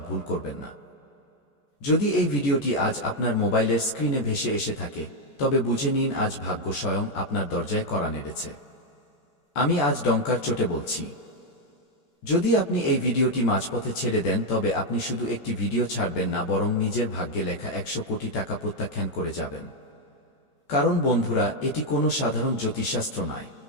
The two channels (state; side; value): late; right; 14 ms